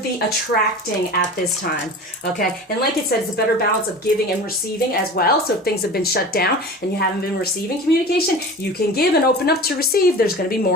attracting at this time, okay? And like it said, it's a better balance of giving and receiving as well. So if things have been shut down and you haven't been receiving communication, you can give and open up to receive. There's going to be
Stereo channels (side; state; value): both; normal; correlation 0.36